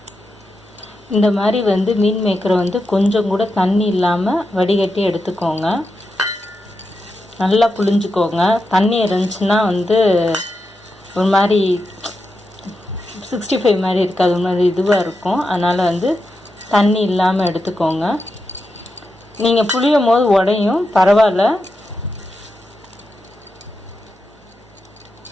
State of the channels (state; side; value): normal; both; correlation 0.88